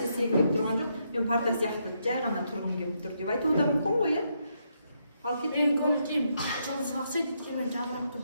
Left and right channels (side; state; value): both; inverted; correlation -0.78